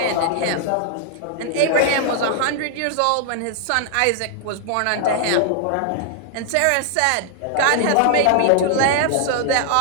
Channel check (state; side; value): different; both; correlation 0.00